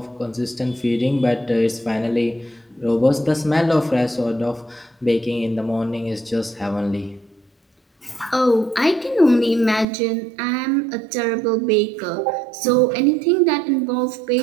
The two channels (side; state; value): left; drops out; at 9.9 s